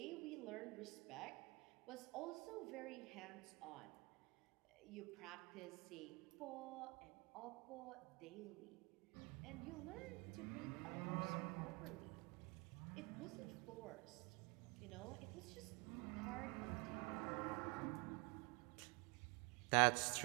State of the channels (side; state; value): left; quieter; 27.8 dB